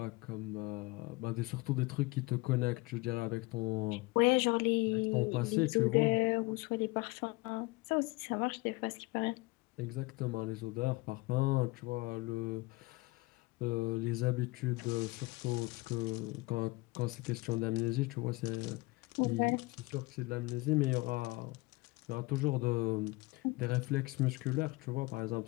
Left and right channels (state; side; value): quieter; right; 22.9 dB